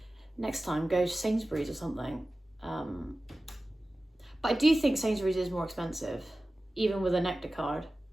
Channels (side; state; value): both; normal; correlation 0.96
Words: next time go to Sainsbury's or something. But I do think Sainsbury's is more expensive, even with a Nectar card.